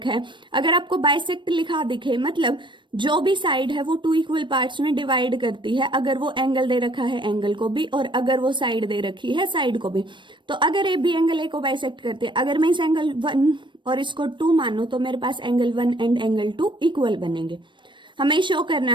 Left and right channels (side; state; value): left; late; 0.23 ms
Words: है? अगर आपको बाइसेक्ट लिखा दिखे, मतलब जो भी साइड है वो टू इक्वल पार्ट्स में डिवाइड करती है, अगर वो एंगल दे रखा है एंगल को भी और अगर वो साइड दे रखी है साइड को भी। तो अगर AB एंगल A को बाइसेक्ट करते हैं, अगर मैं इस एंगल 1 और इसको 2 मानूं तो मेरे पास एंगल 1 एंड एंगल 2 इक्वल बनेंगे। हमें शो करना